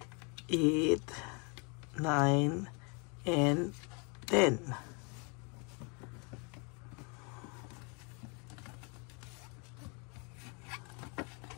8, 9, and 10.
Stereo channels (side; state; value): right; quieter; 33.6 dB